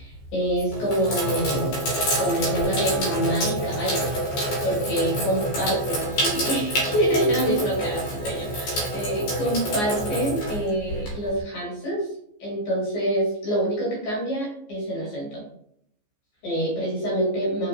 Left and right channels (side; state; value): right; late; 14 ms